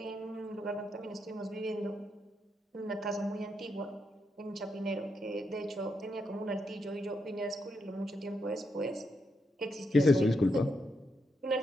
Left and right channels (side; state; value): both; normal; correlation 0.81